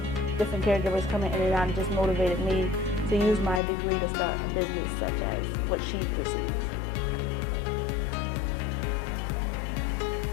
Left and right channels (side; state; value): right; drops out; at 3.6 s